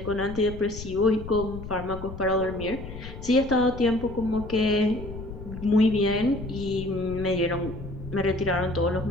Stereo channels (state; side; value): noise; left; rumble, 11 dB below the sound